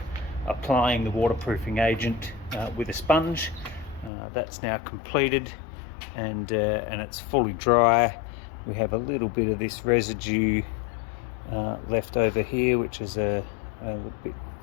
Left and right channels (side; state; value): right; drops out; at 4.1 s